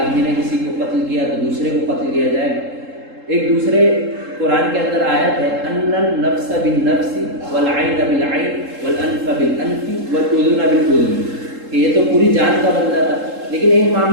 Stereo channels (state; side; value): late; left; 3.7 ms